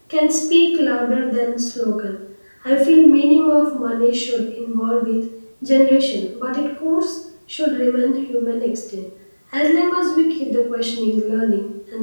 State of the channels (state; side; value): inverted; both; correlation -1.00